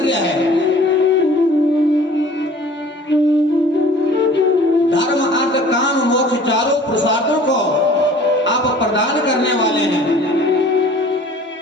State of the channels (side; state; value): both; normal; correlation 0.48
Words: है। धर्म अर्थ काम मोक्ष चारों पुरुषार्थों को आप प्रदान करने वाले हैं।